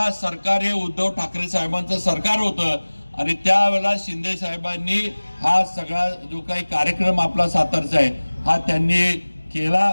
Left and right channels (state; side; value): inverted; both; correlation -1.00